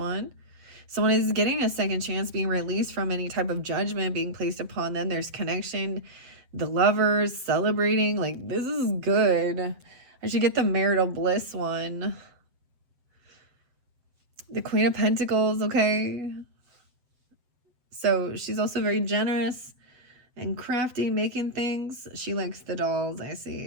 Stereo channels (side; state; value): left; late; 7.9 ms